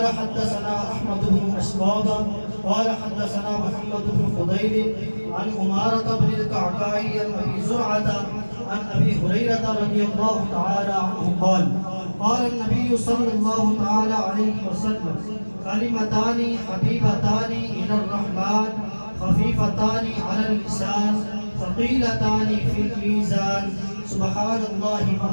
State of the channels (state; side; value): inverted; both; correlation -1.00